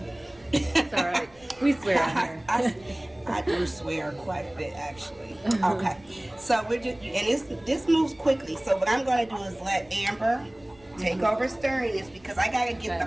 It's all right. We swear on here. I do swear quite a bit, actually. Okay, so we're just, and this moves quickly. So what I'm going to do is let Amber take over stirring this because I got to get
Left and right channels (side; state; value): right; noise; rumble, 27 dB below the sound